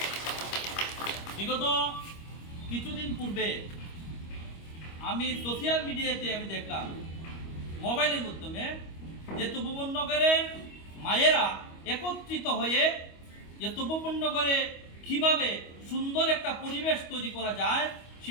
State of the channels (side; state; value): right; late; 25 ms